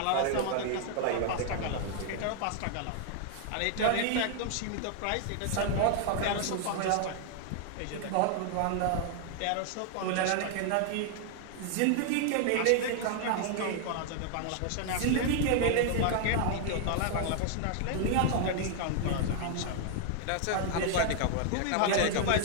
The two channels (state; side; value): different; both; correlation 0.00